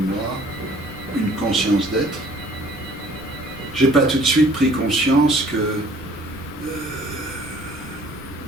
une conscience d'être. Je n'ai pas tout de suite pris conscience que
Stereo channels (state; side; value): noise; right; rumble, 21 dB below the sound